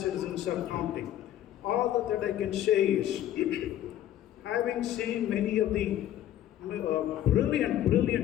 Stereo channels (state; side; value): quieter; right; 12.1 dB